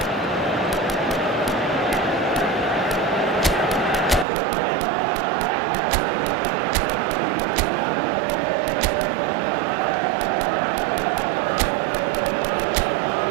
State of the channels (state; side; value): drops out; left; at 4.2 s